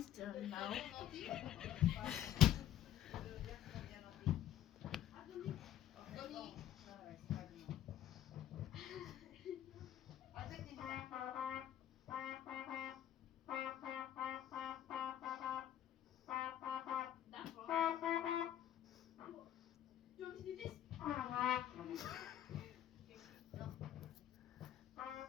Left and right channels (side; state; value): right; quieter; 11.4 dB